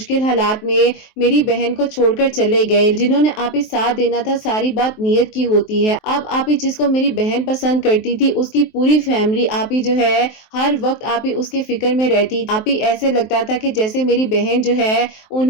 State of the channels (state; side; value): late; right; 23 ms